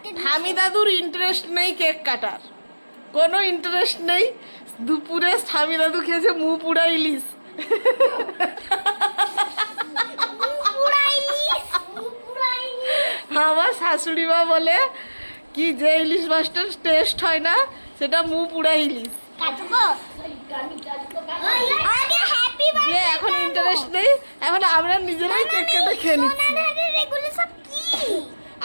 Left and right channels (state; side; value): inverted; both; correlation -1.00